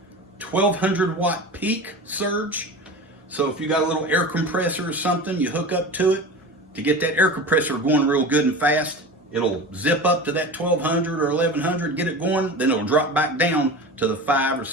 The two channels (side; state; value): both; normal; correlation 0.31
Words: 1200 watt peak surge. So if you got a little air compressor or something, you hook up to it to get that air compressor going real good and fast. It'll zip up to that 1200 or 1100, get it going, then it'll drop back down to the 500 or